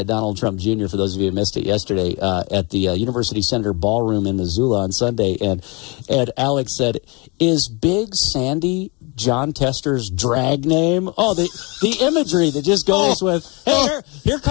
Donald Trump Jr., for those of you who missed it yesterday, at the University Center Ballroom in Missoula on Sunday. And Alex said, "Is Big Sandy Jon Tester's drag name?" Oh, the imagery that just goes with, "Hey, here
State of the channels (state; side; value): quieter; right; 28.9 dB